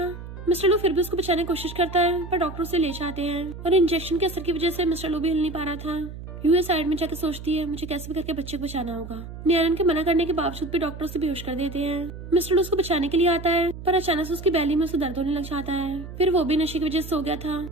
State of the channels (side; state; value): right; noise; hum, 11 dB below the sound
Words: मिस्टर लू फिर भी उसको बचाने की कोशिश करता है पर डॉक्टर उसे ले जाते हैं और इंजेक्शन के असर की वजह से मिस्टर लू भी हिल नहीं पा रहा था। यूए साइड में जाकर सोचती है मुझे कैसे भी करके बच्चे को बचाना होगा। नियानन के मना करने के बावजूद भी डॉक्टर उसे बेहोश कर देते हैं। मिस्टर लू उसको बचाने के लिए आता है पर अचानक से उसकी बैली में उसे दर्द होने लग जाता है। फिर वो भी नशे की वजह से सो गया था।